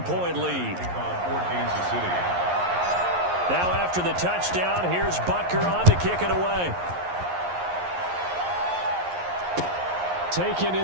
lead. Now after the touchdown, here's Butker on to kick it away. Taken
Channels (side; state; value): left; late; 11 ms